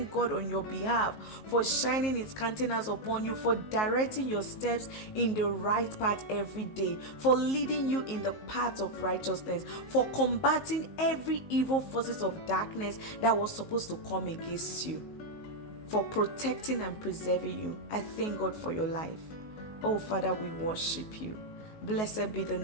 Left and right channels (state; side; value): late; right; 19 ms